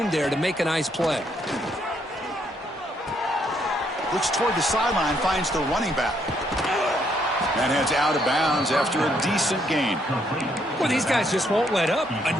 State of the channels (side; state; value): both; normal; correlation 0.72